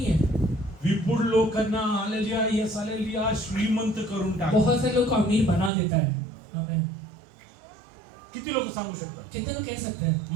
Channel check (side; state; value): left; drops out; at 5.7 s